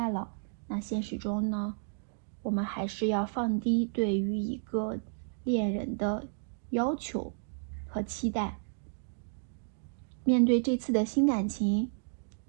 了。那现实中呢，我们还是要放低对于一个恋人的要求和期待。面对这次的新感情，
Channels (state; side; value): silent; left; digital silence